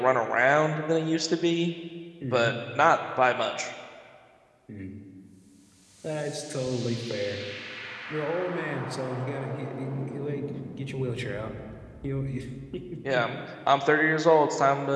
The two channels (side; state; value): both; identical; correlation 1.00